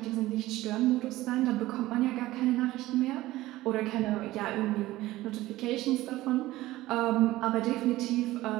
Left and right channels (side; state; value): left; quieter; 17.0 dB